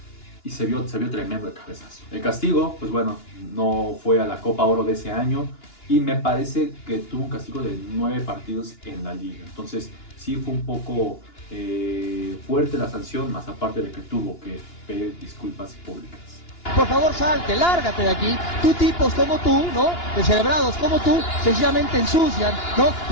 se vio tremendo el cabezazo. El castigo, pues bueno, no fue a la Copa Oro de ese año, y me parece que tuvo un castigo de 9 partidos en la liga. Entonces sí fue un poco fuerte la sanción, más aparte de que tuvo que pedir disculpas públicas. Por favor, salte, lárgate de aquí. Tú tipos como tú, ¿no? Descerebrados como tú, sencillamente ensucian, ¿no?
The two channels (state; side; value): late; right; 2.9 ms